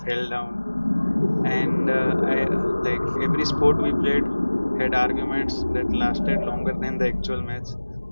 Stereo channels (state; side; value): inverted; both; correlation -1.00